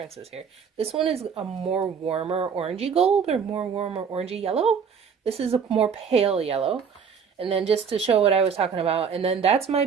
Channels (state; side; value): quieter; left; 6.5 dB